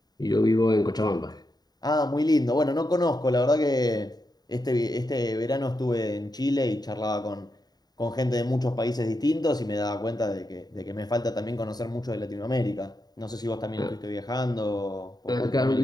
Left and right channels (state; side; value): late; right; 0.19 ms